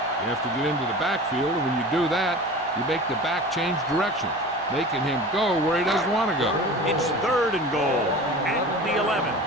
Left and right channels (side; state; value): both; normal; correlation 0.36